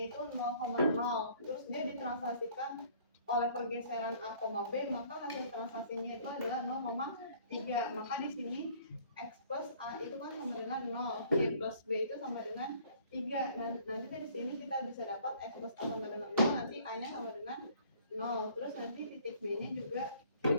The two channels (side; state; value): both; inverted; correlation -0.56